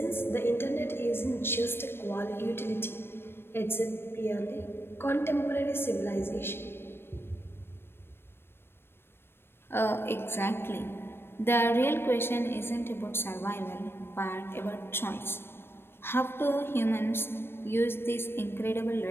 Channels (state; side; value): late; right; 0.11 ms